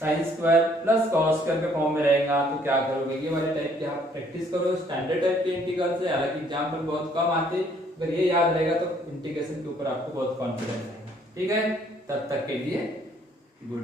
square plus cos square के फॉर्म में रहेगा तो क्या करोगे, ये वाले टाइप के आप प्रैक्टिस करो, स्टैंडर्ड टाइप के इंटीग्रल से, हालांकि एग्जाम में बहुत कम आते, अगर ये याद रहेगा तो इंटीग्रेशन के ऊपर आपको बहुत कॉन्फिडेंस आएगा, ठीक है। तब तक के लिए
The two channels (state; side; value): normal; both; correlation 0.63